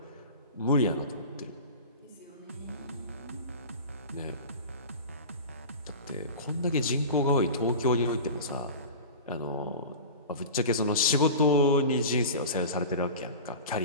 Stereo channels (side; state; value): both; inverted; correlation -0.33